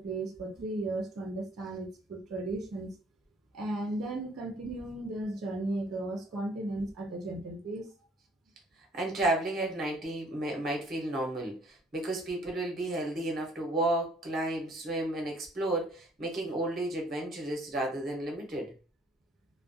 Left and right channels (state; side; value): normal; both; correlation 0.60